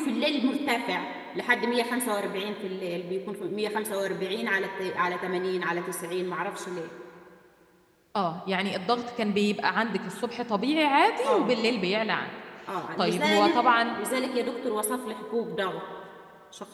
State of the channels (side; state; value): both; identical; correlation 1.00